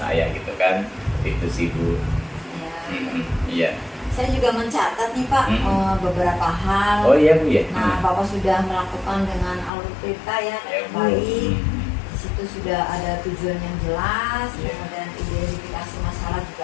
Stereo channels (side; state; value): right; drops out; at 9.7 s